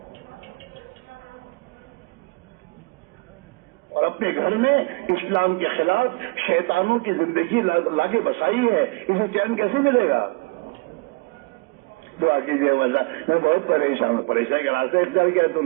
اور اپنے گھر میں اسلام کے خلاف شیطانوں کی زندگی لا کے بسائی ہے. اسے چین کیسے ملے گا؟ دعا کیجیے اللہ، میں بہت پریشان ہوں. پریشانی کا راستہ اختیار کیا ہے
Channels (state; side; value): quieter; left; 26.6 dB